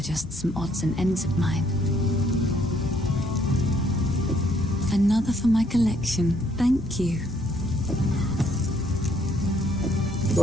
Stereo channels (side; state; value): both; normal; correlation 0.68